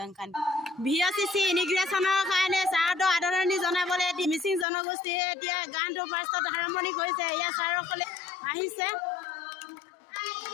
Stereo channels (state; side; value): drops out; right; at 4.7 s